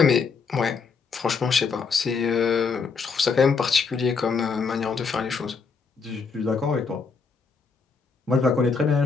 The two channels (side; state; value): right; quieter; 5.1 dB